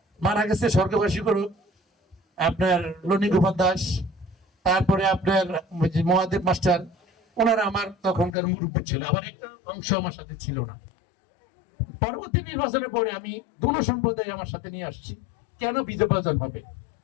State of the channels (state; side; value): drops out; right; at 8.3 s